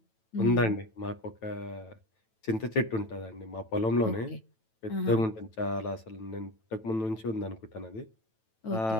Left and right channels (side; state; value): right; late; 9.1 ms